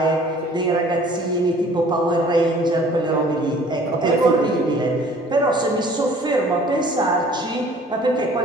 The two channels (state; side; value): normal; both; correlation 0.52